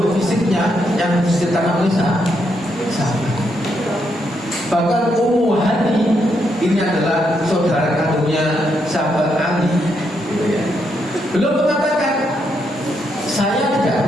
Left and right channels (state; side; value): normal; both; correlation 0.78